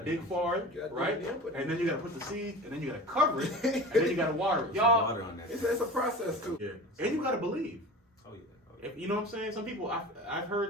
dig far, right? And then you gotta put the seed, and then you gotta cover it, and then you gotta water it. Y'all, it's a process too. Yeah, and you gotta believe. Oh yeah. If, you know what I'm saying? Some people, I've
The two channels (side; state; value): both; normal; correlation 0.35